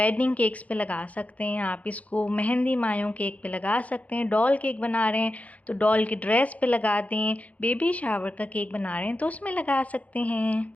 केक्स पे लगा सकते हैं, आप इसको मेहंदी मायों केक पे लगा सकते हैं, डॉल केक बना रहे हैं तो डॉल की ड्रेस पे लगा दें, बेबी शावर का केक बना रहे हैं तो उसमें लगा सकते हैं।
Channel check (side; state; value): right; late; 0.069 ms